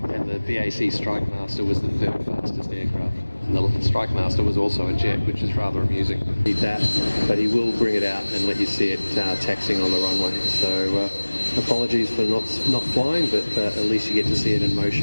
the BAC Strikemaster was the third fastest aircraft. And the Strikemaster was also a jet, which is rather amusing. Need that, but he will bring it out and let you see it taxiing on the runway. So apologies for not flying, but at least you get to see it in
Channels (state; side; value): inverted; both; correlation -1.00